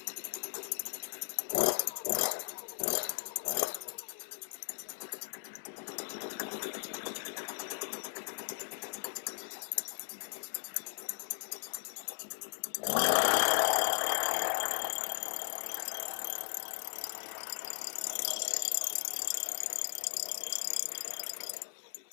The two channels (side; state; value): right; silent; 53 dB below the other